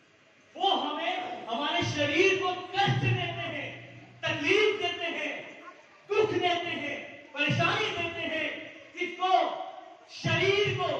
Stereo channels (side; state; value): both; identical; correlation 1.00